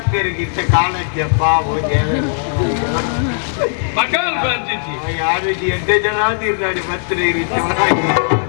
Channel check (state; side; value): silent; right; digital silence